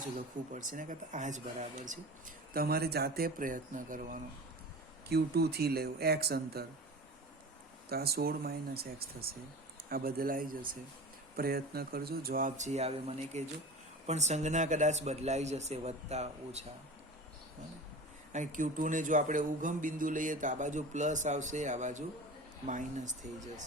લખવું પડશે. ને કરતાં આ જ બરાબર છે. તમારે જાતે પ્રયત્ન કરવાનો. Q2 થી લેવું x અંતર, તો આ 16 - x થશે. આ બદલાઈ જશે. પ્રયત્ન કરજો. જવાબ જે આવે મને કહેજો. પણ સંજ્ઞા કદાચ બદલાઈ જશે, વત્તા ઓછા. અને Q2 ને જો આપણે ઉગમ બિંદુ લઈએ તો આ બાજુ પ્લસ આવશે, આ બાજુ માઇનસ થઈ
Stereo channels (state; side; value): normal; both; correlation 0.34